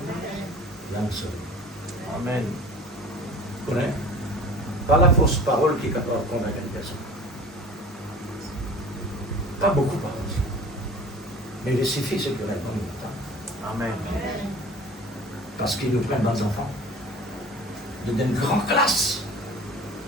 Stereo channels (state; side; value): normal; both; correlation 0.42